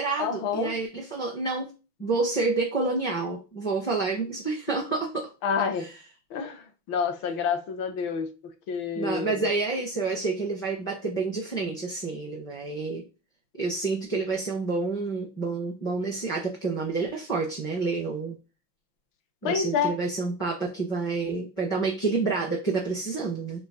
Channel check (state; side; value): late; right; 5.8 ms